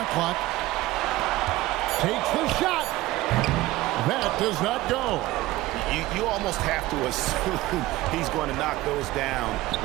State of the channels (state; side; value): quieter; left; 17.8 dB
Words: clock. Takes the shot. That does not go. You almost have to assume he's going to knock those down